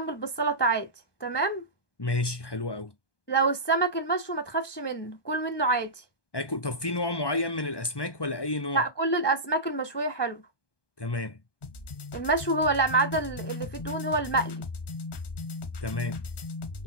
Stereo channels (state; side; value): late; right; 1.2 ms